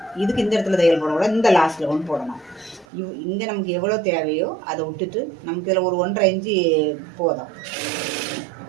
இதுக்கு இந்த இடத்துல தையல் போடக்கூடாது, இந்த லாஸ்ட்டில் கொண்டு போடணும். இங்கே நமக்கு எவ்வளோ தேவையோ அதை விட்டுட்டு நமக்கு இதில் ஒரு 1.5 இன்ச்சு போதும்.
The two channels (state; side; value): drops out; left; at 2.9 s